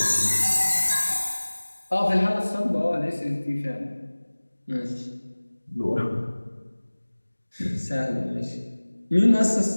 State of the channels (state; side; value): inverted; both; correlation -1.00